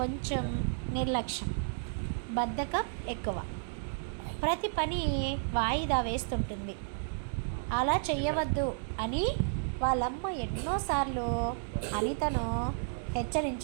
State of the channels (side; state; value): left; silent; digital silence